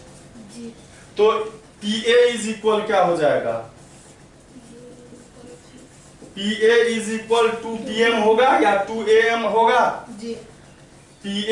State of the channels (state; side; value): identical; both; correlation 1.00